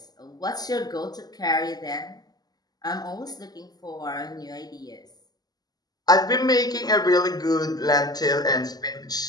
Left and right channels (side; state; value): right; late; 0.19 ms